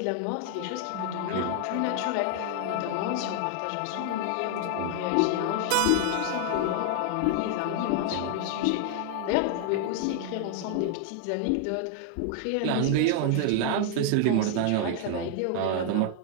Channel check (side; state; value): both; different; correlation 0.00